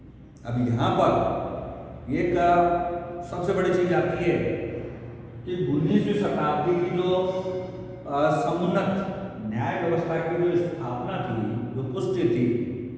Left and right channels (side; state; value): both; identical; correlation 1.00